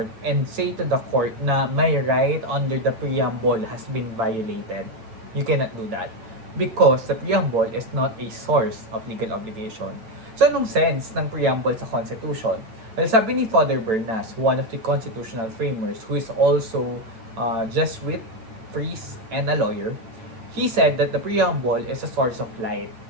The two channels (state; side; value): late; left; 8.9 ms